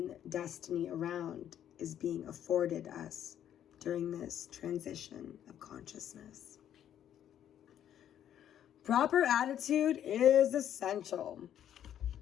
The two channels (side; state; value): right; quieter; 10.4 dB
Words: destiny around is being afforded us during this transition of consciousness. Proper attitude is essential.